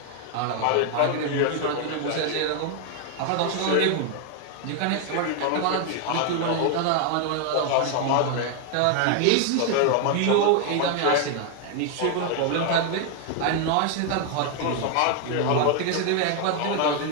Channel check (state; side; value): different; both; correlation 0.00